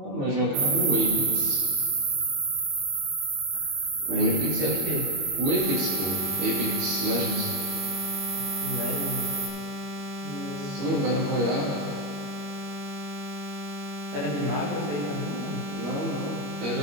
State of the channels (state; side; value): late; left; 21 ms